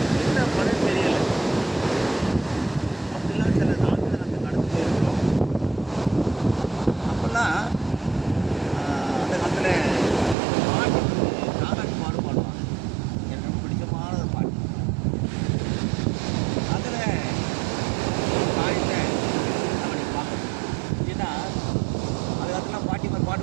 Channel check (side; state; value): left; drops out; at 10.4 s